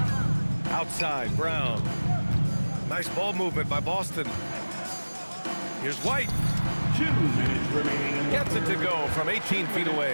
Outside, Brown. Nice ball movement by Boston. Here's White. 2 minutes remaining. Gets it to go from 18 feet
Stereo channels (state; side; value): inverted; both; correlation -1.00